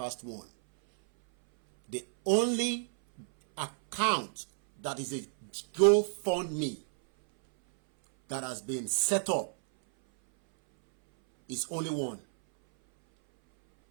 1. The only account that is a GoFundMe that has been set up is only one.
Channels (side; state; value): left; silent; 57 dB below the other